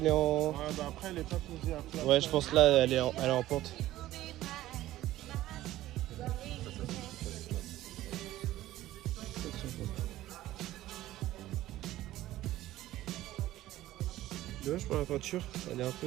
est en. Ouais, bah après, elle est pas posée à plat. Ouais, je pense là, elle est en pente. Dommage pour la peinture, elle est un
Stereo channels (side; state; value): left; quieter; 15.1 dB